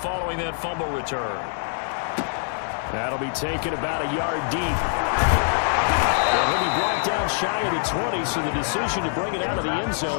following that fumble return. That'll be taken about a yard deep. And he'll be brought down shy of the 20, so the decision to bring it out of the end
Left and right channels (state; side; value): silent; right; 56 dB below the other